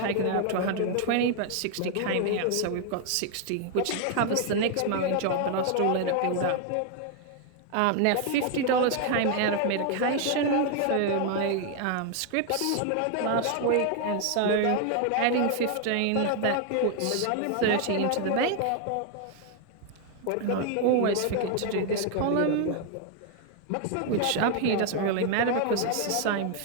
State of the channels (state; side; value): different; both; correlation 0.00